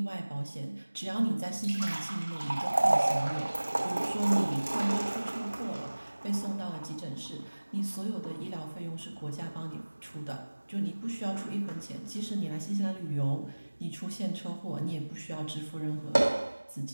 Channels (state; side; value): inverted; both; correlation -1.00